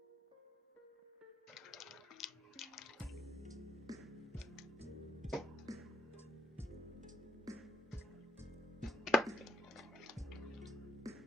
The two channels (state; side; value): normal; both; correlation 0.76